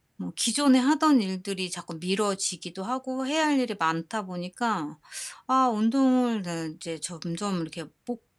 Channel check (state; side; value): identical; both; correlation 1.00